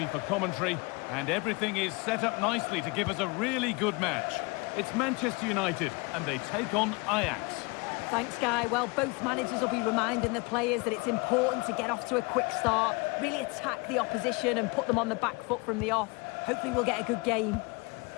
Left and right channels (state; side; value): quieter; right; 27.4 dB